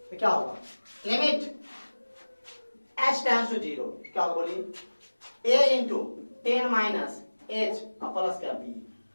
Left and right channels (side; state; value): both; inverted; correlation -1.00